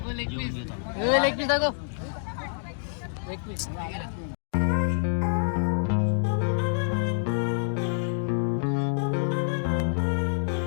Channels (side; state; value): right; silent; digital silence